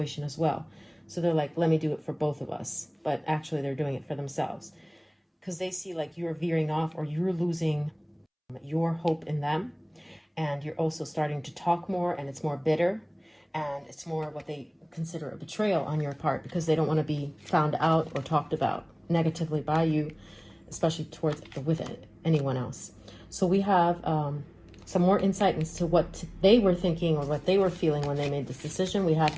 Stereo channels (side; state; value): both; identical; correlation 1.00